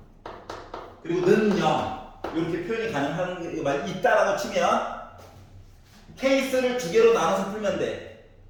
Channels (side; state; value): both; identical; correlation 1.00